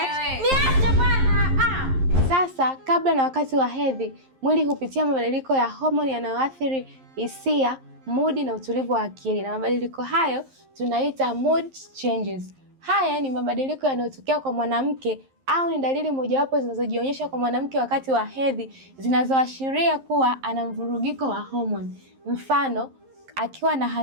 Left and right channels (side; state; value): left; late; 11 ms